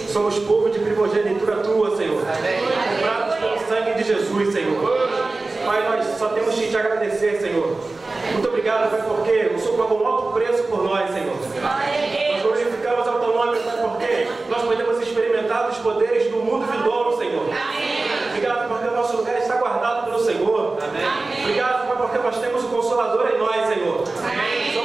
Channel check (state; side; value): quieter; left; 3.4 dB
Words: povo de primogenitura tua, Senhor. Comprados pelo sangue de Jesus, Senhor. Pai, nós só temos que te agradecer, Senhor. Muito obrigado, Pai, porque o Senhor pagou um alto preço por nós, Senhor. Nós glorificamos ao teu nome, Pai, porque nós podemos experimentar os poderes do mundo vindouro, Senhor. Obrigado porque o nosso lugar está guardado pelo Senhor. Obrigado, Pai, porque nós temos o Consolador em nós, Senhor.